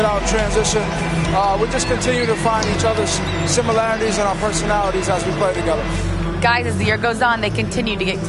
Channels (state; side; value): identical; both; correlation 1.00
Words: out in transition, we just continue to find each other's similarities and our personalities as we play together. guys, as the year goes on, they continue to get